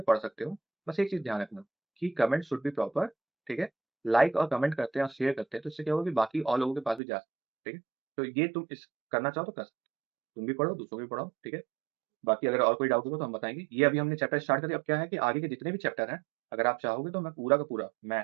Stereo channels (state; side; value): drops out; left; at 7.0 s